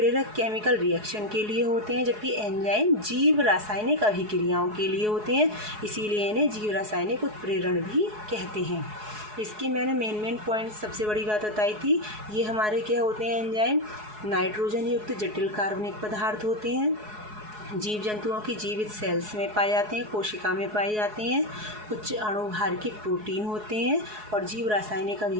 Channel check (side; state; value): left; late; 4.7 ms